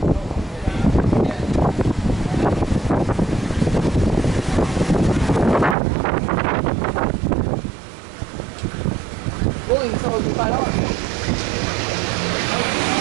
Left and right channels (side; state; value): left; drops out; at 5.8 s